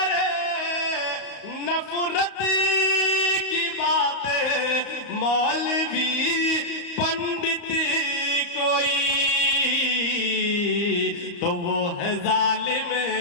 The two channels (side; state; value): right; late; 34 ms